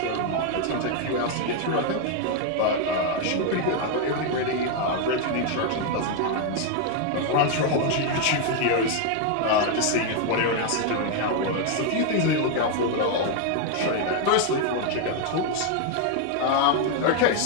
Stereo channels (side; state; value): both; different; correlation 0.01